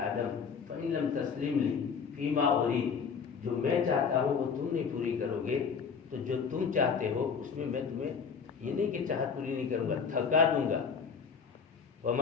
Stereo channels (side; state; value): right; quieter; 6.1 dB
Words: آدم فَإِن لَمْ تسلیم لی فیما ارید، جو میں چاہتا ہوں وہ تم نہیں پوری کرو گے تو جو تم چاہتے ہو اس میں تمہیں یہ نہیں کہ چاہت پوری نہیں کروں گا، تھکا دوں گا.